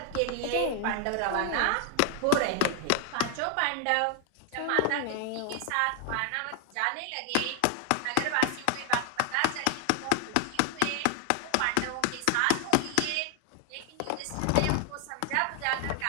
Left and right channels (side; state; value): both; different; correlation 0.01